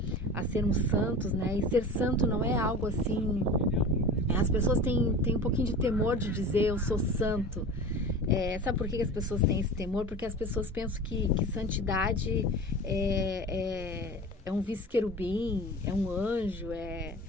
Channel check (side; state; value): both; normal; correlation 0.35